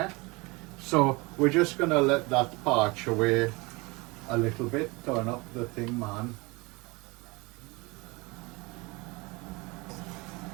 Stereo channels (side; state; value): left; quieter; 25.3 dB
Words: So we're just going to let that parch away a little bit. Turn up the thing, man.